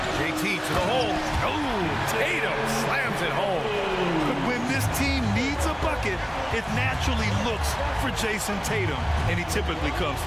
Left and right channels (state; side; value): identical; both; correlation 1.00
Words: JT to the hole. Oh, Tatum slams it home. But when this team needs a bucket, it naturally looks for Jason Tatum, and he typically comes